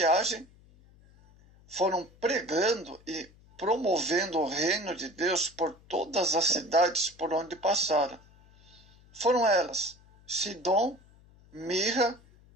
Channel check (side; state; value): left; noise; hum, 27 dB below the sound